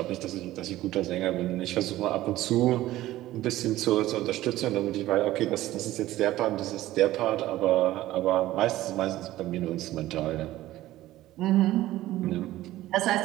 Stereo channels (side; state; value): left; quieter; 15.5 dB